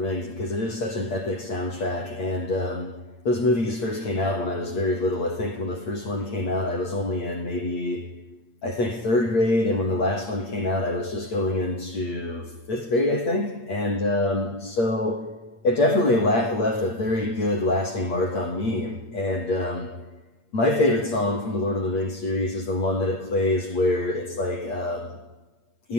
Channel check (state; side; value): late; right; 8.7 ms